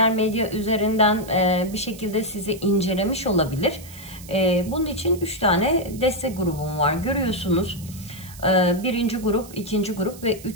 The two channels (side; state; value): right; noise; hiss, 18 dB below the sound